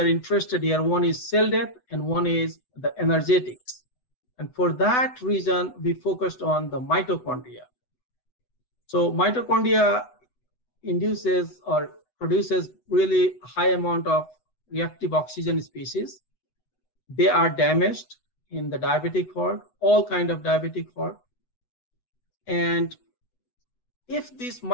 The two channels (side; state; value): right; late; 8.0 ms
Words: interested here, one is cell death and one is the energetics. And for that reason, we focused on the mitochondria. So mitochondria induces or produces really high amount of reactive oxygen species. They are damaged in the diabetic heart, all kind of diabetic heart. And if this